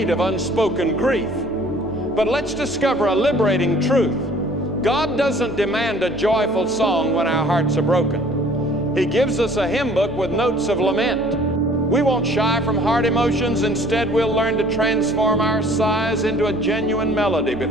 of unspoken grief, but let's discover a liberating truth. God doesn't demand a joyful song when our hearts are broken. He gives us a hymn book with notes of lament. We won't shy from hard emotions. Instead, we'll learn to transform our sighs into a genuine melody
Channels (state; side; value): normal; both; correlation 0.53